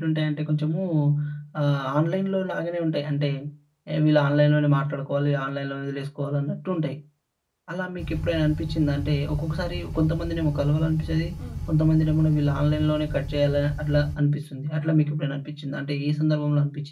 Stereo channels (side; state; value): both; identical; correlation 1.00